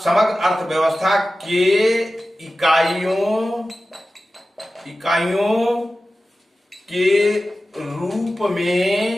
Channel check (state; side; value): normal; both; correlation 0.95